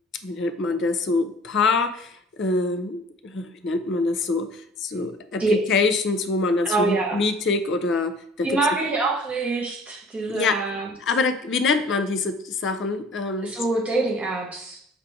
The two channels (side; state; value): both; normal; correlation 0.49